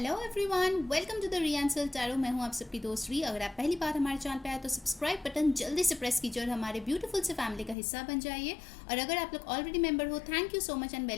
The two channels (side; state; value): right; drops out; at 7.8 s